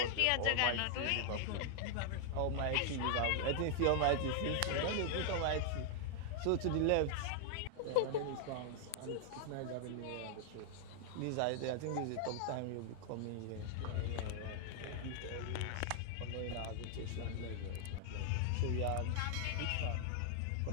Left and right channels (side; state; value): both; different; correlation 0.00